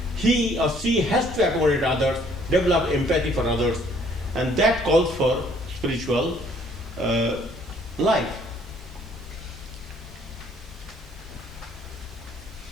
He or she has to accommodate others, develop empathy for others, and that calls for spiritual life.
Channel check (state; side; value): normal; both; correlation 0.62